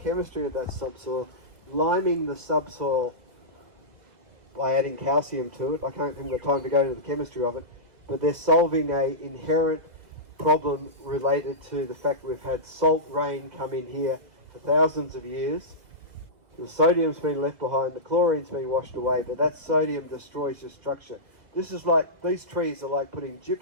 of that subsoil, liming the subsoil by adding calcium to it. I can't have the time to go into the chemistry of it, but they're solving an inherent problem related to the fact we've had salt rain come in here for thousands of years. The sodium's been left behind, the chlorine's been washed away, but that sodium destroys your structure. This is like, these trees are like putting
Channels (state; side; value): late; left; 2.0 ms